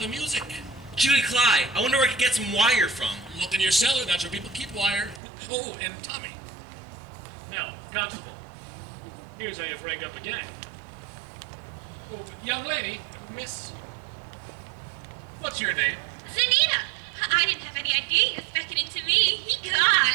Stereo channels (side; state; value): left; drops out; at 5.2 s